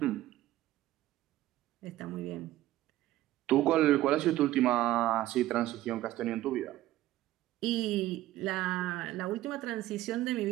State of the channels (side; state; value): left; quieter; 15.3 dB